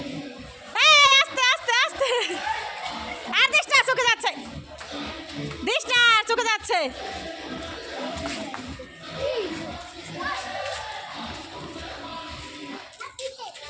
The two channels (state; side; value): identical; both; correlation 1.00